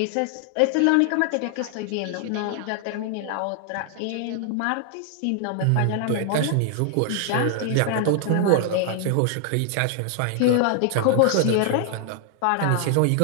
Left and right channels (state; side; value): different; both; correlation 0.00